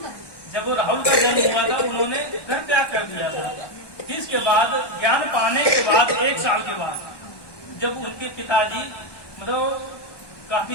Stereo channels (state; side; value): late; right; 1.2 ms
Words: जब वो राहुल का जन्म हुआ था उन्होंने घर त्याग कर दिया था। इसके बाद ज्ञान पाने के बाद 1 साल के बाद जब उनके पिताजी मतलब